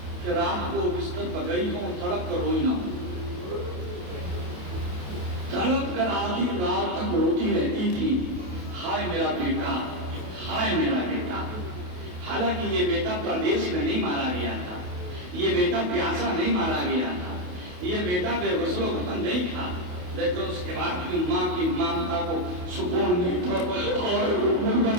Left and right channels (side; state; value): left; late; 28 ms